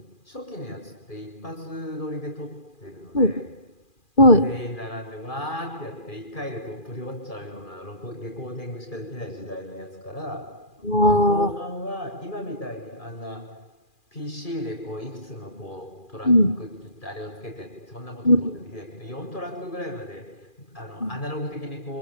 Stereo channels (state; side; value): late; right; 2.4 ms